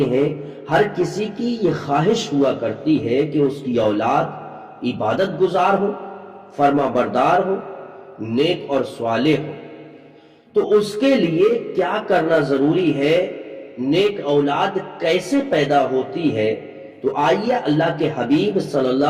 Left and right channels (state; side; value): identical; both; correlation 1.00